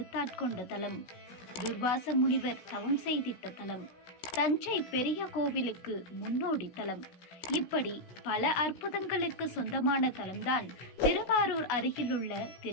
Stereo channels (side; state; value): right; late; 16 ms